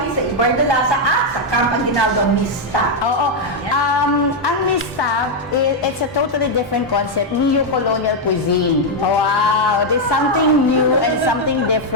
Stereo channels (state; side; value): normal; both; correlation 0.00